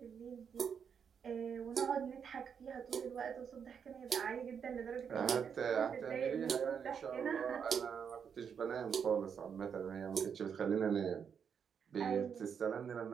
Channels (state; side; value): quieter; left; 7.1 dB